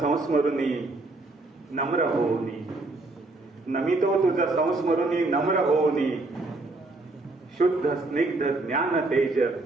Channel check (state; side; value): quieter; left; 3.1 dB